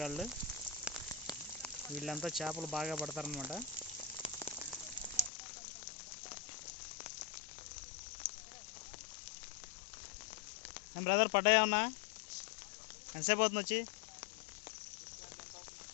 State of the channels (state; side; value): drops out; right; at 5.3 s